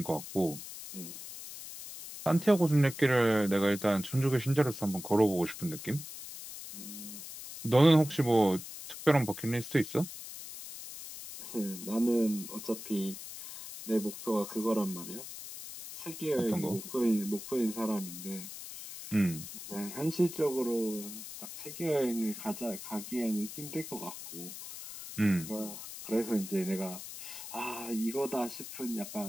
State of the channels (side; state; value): left; noise; hiss, 11 dB below the sound